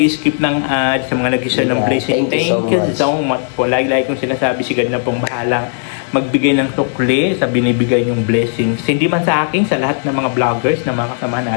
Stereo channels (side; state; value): right; silent; 70 dB below the other